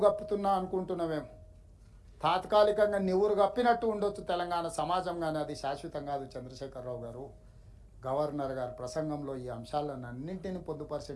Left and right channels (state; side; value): identical; both; correlation 1.00